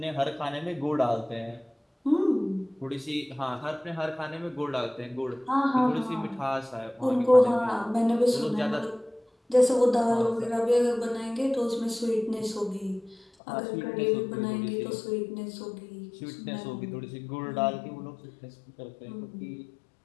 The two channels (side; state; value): right; drops out; at 13.2 s